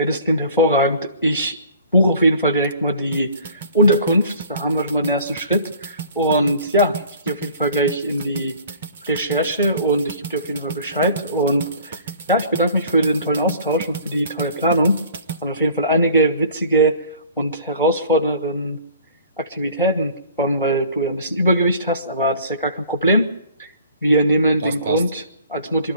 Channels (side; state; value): both; inverted; correlation -0.49